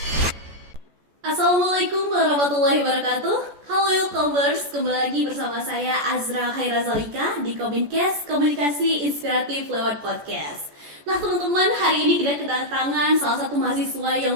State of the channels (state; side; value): late; left; 14 ms